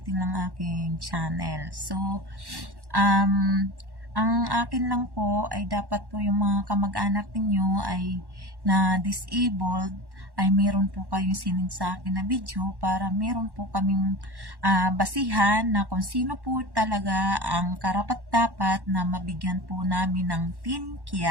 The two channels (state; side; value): late; left; 1.1 ms